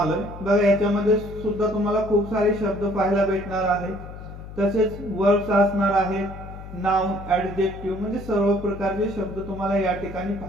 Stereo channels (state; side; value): noise; left; hum, 13 dB below the sound